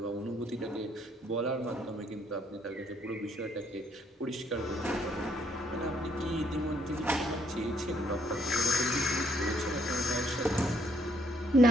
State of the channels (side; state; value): both; normal; correlation 0.70